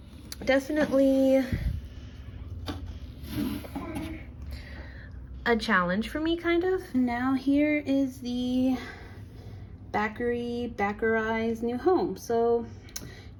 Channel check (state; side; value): identical; both; correlation 1.00